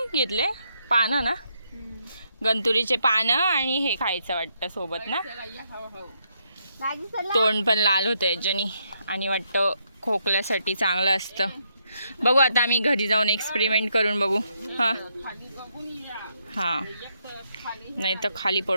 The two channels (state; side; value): inverted; both; correlation -0.77